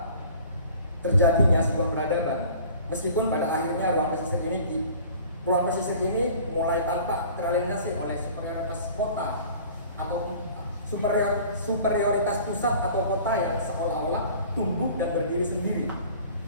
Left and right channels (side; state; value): both; inverted; correlation -0.47